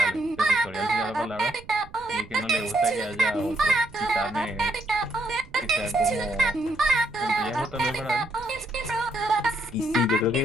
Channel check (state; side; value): noise; right; rumble, 21 dB below the sound